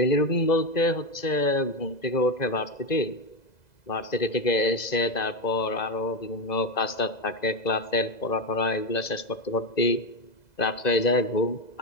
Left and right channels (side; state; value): right; late; 2.0 ms